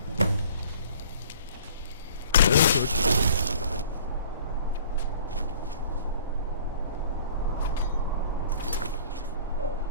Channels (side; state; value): both; inverted; correlation -0.49